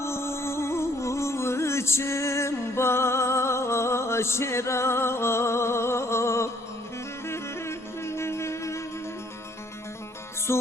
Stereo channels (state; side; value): normal; both; correlation 0.63